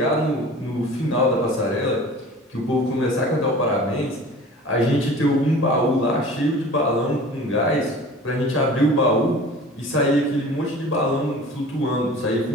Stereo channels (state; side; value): normal; both; correlation 0.42